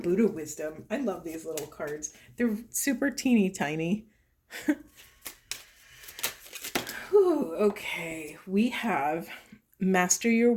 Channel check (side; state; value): both; identical; correlation 1.00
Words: wisdom. I love these little cards. They're super teeny tiny. Whew, okay, we have master your